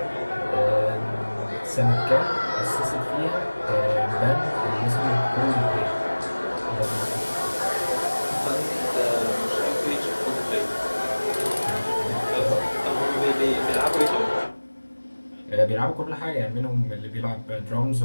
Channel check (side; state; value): both; inverted; correlation -1.00